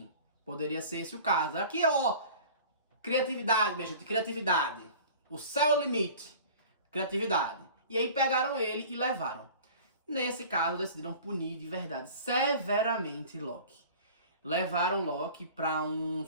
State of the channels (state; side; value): inverted; both; correlation -0.43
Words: poderia ser esse o caso. Aqui, ó, criatividade, minha gente, criatividade. O céu é o limite, criatividade. E aí pegaram ele e levaram. Nesse caso, decidiram punir de verdade, severamente Loki. Levaram Loki para um